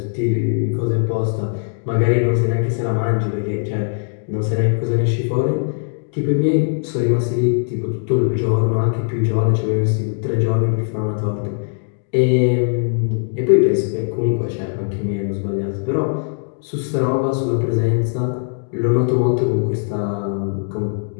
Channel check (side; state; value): right; silent; digital silence